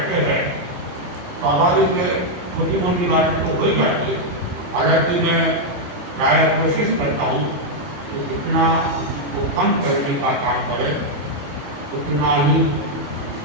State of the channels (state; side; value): late; left; 28 ms